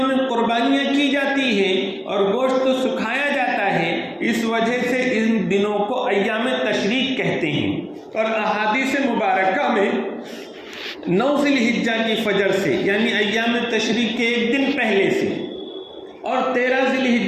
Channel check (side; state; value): both; identical; correlation 1.00